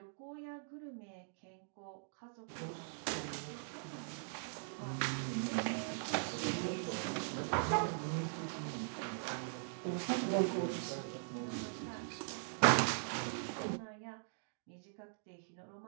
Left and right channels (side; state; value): left; silent; digital silence